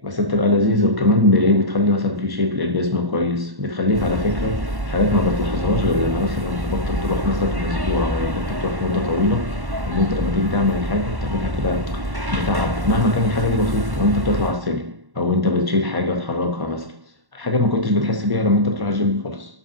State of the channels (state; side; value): late; left; 1.1 ms